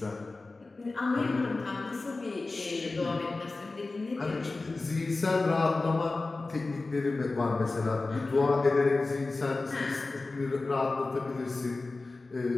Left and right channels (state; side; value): quieter; right; 3.5 dB